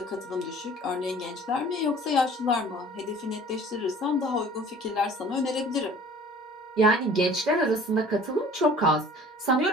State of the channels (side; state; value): both; normal; correlation 0.48